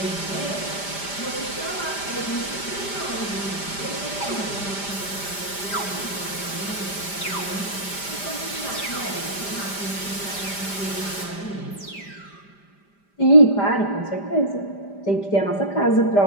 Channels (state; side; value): late; right; 5.0 ms